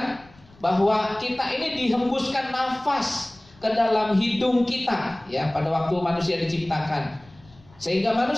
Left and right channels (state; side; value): noise; left; rumble, 27 dB below the sound